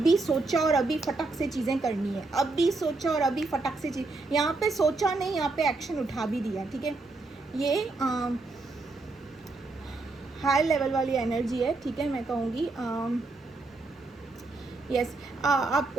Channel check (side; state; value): left; quieter; 3.4 dB